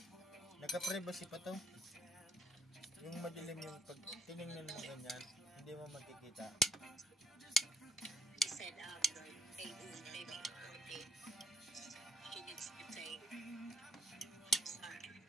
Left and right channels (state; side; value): normal; both; correlation 0.71